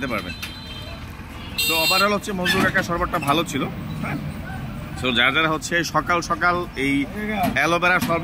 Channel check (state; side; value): identical; both; correlation 1.00